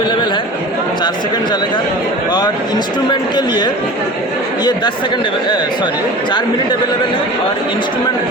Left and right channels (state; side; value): normal; both; correlation 0.37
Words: है, 4 सेकंड चलेगा। और इंस्ट्रूमेंट के लिए ये 4 मिनट अवेलेबल है। और इंस्ट्रूमेंट